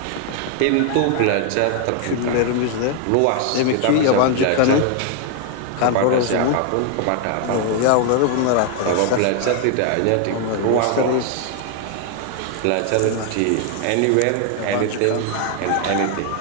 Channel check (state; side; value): different; both; correlation 0.00